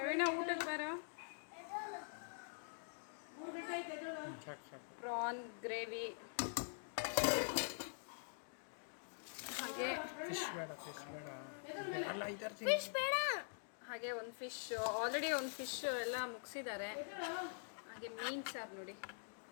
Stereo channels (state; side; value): silent; right; digital silence